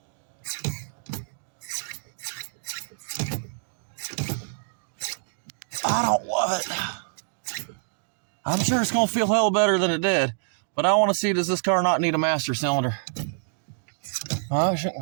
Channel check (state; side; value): silent; left; digital silence